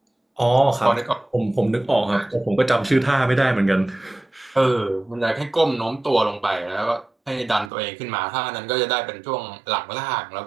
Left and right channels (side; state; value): left; drops out; at 7.7 s